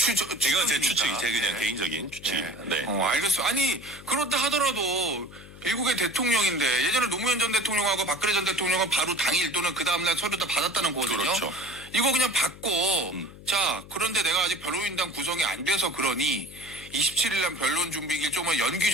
이건 제 추측이 제 그냥 개인적인 추측입니다. 네. 알겠어요. 아니 그렇다 하더라도 미국의 대통령인데 예전에 노무현 전 대통령하고 박근혜 전 대통령은 바로 당일 또는 그 다음날 서류 다 받았다는 거거든요. 그렇죠. 이거 그냥 받고 자 그런데 내가 아직 변호인단 구성이 안 돼서 그러니 27일 날 변론 준비길 좀만 연기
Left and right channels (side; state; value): left; noise; hum, 18 dB below the sound